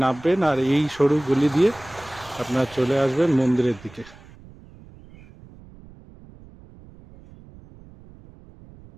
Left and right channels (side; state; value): right; noise; rumble, 22 dB below the sound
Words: নামবেন আর এই সরু গলি দিয়ে আপনারা চলে আসবেন মন্দিরের দিকে।